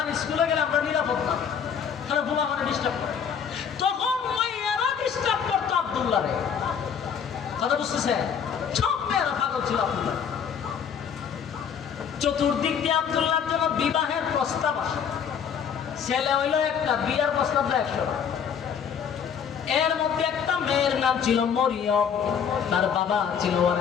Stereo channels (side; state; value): right; quieter; 7.5 dB